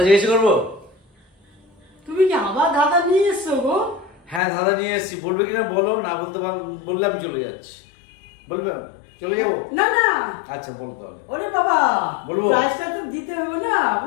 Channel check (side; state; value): right; drops out; at 4.4 s